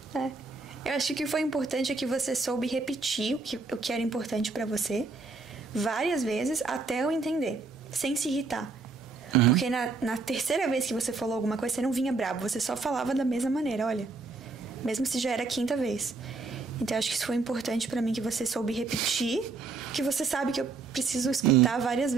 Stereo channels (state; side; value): quieter; left; 4.1 dB